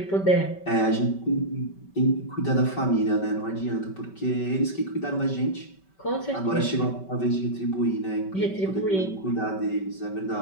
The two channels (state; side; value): late; right; 5.2 ms